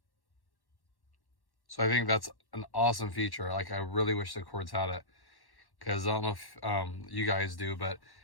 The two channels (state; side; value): late; right; 1.1 ms